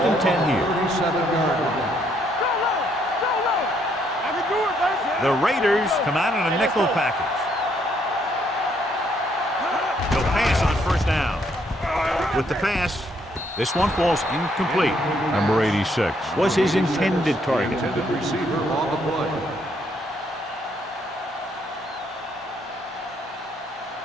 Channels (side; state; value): both; normal; correlation 0.71